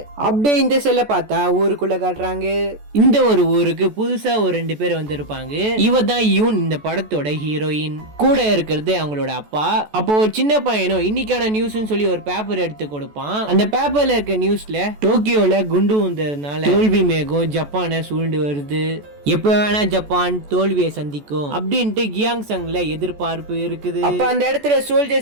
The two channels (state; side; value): late; left; 14 ms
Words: அப்படியே இந்த செல்ல பார்த்தா ஊருக்குள்ள காட்டுறாங்க. இந்த ஒரு ஊருக்கு புதுசா ஒரு 2 பேர் வந்திருப்பாங்க. இவ தான் இந்த படத்தோட ஹீரோயின். கூட இருக்கிறது அவங்களோட அப்பா. அப்போ ஒரு சின்ன பையனும் இன்னைக்கான நியூஸ்னு சொல்லி ஒரு பேப்பர் எடுத்து கொடுப்பான். அந்த பேப்பர்ல இருக்க நியூஸ்ல டோக்கியோல குண்டு வந்ததுனால தோல்வி மேகம் ஜப்பானை சூழ்ந்து வருது, எப்ப வேணா ஜப்பான் தோல்வியை சந்திக்கும் அப்படின்ட்டு கியாங்சங்ல எதிர்பார்ப்பு இருக்குது. அப்ப அந்த இடத்துல